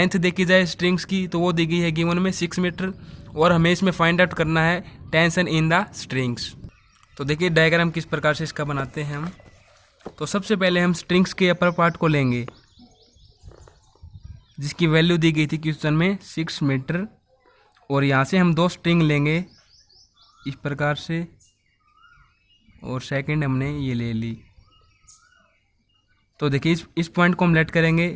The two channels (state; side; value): identical; both; correlation 1.00